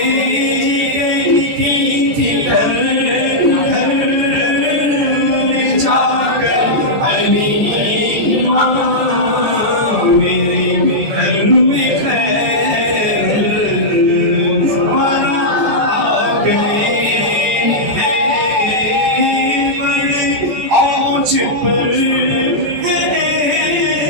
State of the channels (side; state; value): left; late; 14 ms